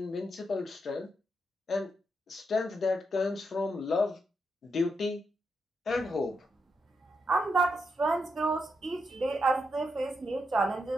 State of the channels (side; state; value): both; normal; correlation 0.83